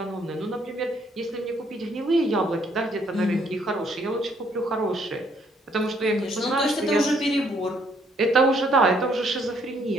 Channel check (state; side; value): normal; both; correlation 0.67